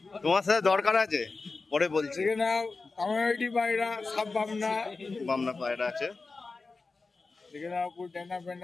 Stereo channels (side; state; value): right; quieter; 3.9 dB